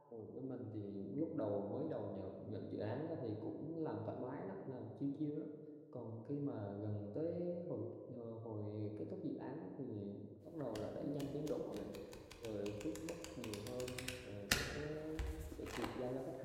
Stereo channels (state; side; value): identical; both; correlation 1.00